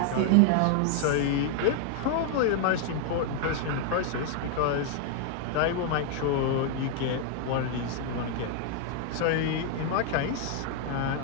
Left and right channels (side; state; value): both; different; correlation 0.00